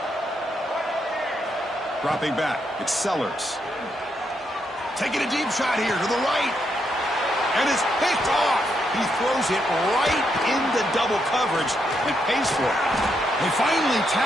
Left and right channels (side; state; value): both; normal; correlation 0.79